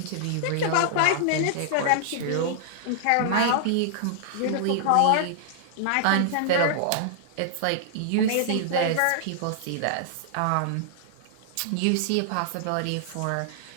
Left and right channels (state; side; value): different; both; correlation -0.01